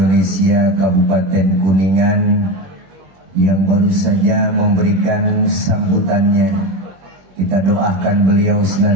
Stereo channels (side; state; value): left; late; 21 ms